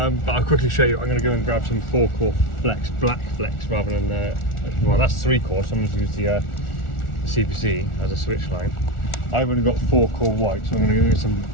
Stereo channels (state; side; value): late; right; 1.4 ms